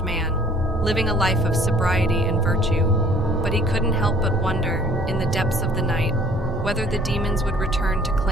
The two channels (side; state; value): both; normal; correlation 0.54